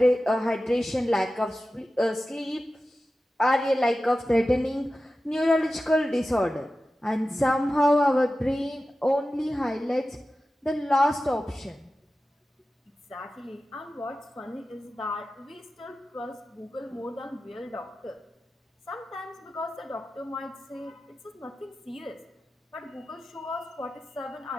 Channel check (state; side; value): normal; both; correlation 0.94